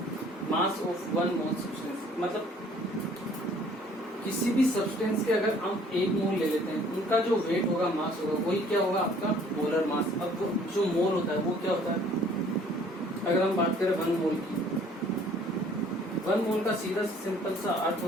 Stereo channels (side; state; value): both; normal; correlation 0.57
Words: मास ऑफ 1 मोल सब्सटेंस, मतलब किसी भी सब्सटेंस के अगर हम 1 मोल ले लेते हैं, उनका जो वेट होगा, मास होगा, वही क्या होगा आपका मोलर मास। अब जो मोल होता है वो क्या होता है, अगर हम बात करें 1 मोल की, 1 मोल का सीधा सिंपल सा अर्थ